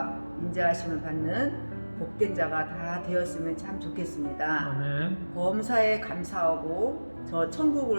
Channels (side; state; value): both; inverted; correlation -1.00